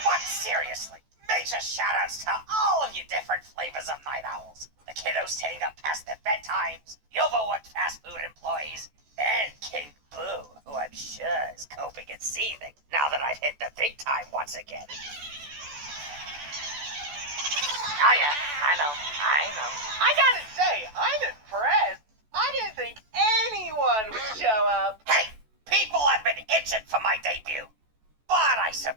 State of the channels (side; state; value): left; late; 14 ms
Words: But seriously, major shoutouts to all of you different flavors of night owls. The kiddos staying up past their bedtimes, the overworked fast food employees, and King Boo, who I'm sure is coping and seething now that I've hit the big time once again. Oh yeah, I know. I gotta say, I'm impressed. I didn't think anyone would show up. Hey, people have been itching for my debut. But I